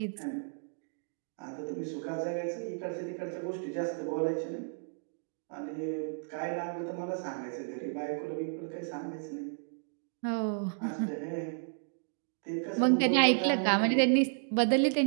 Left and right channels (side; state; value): left; silent; digital silence